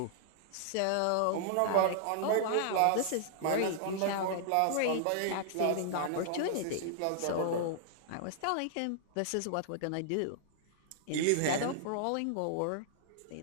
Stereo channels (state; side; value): different; both; correlation -0.01